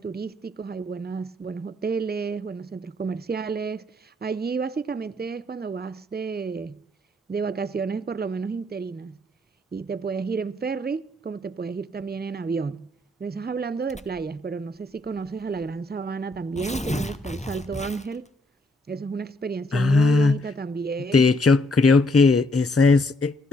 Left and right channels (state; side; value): normal; both; correlation 0.70